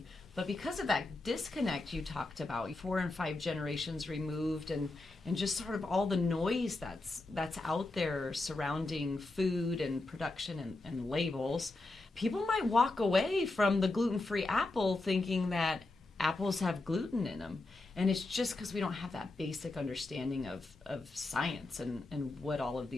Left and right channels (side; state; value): right; quieter; 3.1 dB